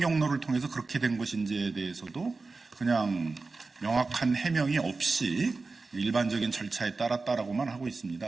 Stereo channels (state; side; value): quieter; left; 3.9 dB